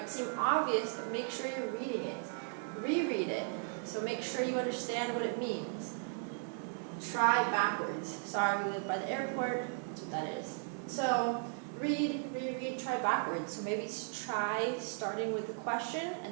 seem obvious, but make sure you're reading it. Reread it. So make sure you understand what it means. Try backwards. Sorry, we live by the airport. That's what that is. So read, reread, try backwards. So maybe try starting with the question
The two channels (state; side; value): silent; left; 54 dB below the other